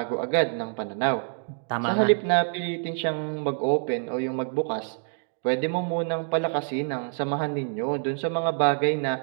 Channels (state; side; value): silent; left; 61 dB below the other